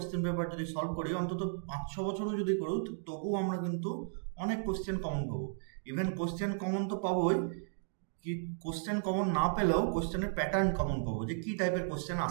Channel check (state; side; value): silent; left; digital silence